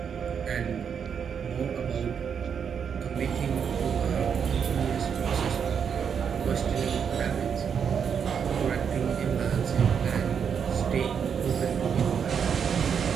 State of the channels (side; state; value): left; quieter; 7.2 dB